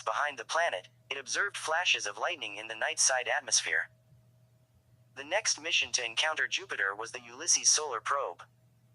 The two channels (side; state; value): both; identical; correlation 1.00